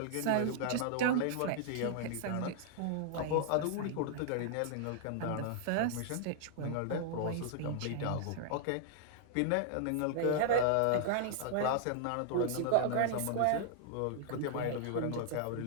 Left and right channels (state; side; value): different; both; correlation -0.01